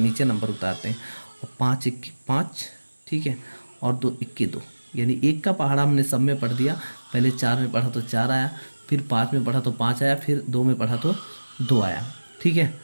नीचे नंबर उतारते हैं। और 5 1 5, ठीक है, और 2 1 के 2, यानी 1 का पहाड़ा हमने सब में पढ़ दिया। पहले 4 में पढ़ा तो 4 आया, फिर 5 में पढ़ा तो 5 आया, फिर 2 में पढ़ा तो 2 आया। ठीक है,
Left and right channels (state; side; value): inverted; both; correlation -1.00